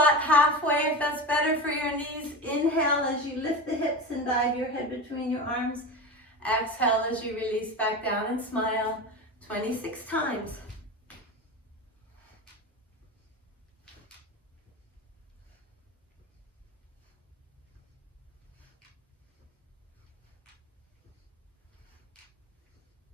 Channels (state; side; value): normal; both; correlation 0.26